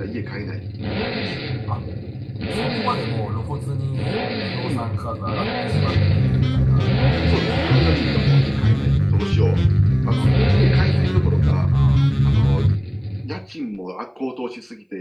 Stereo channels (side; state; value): both; identical; correlation 1.00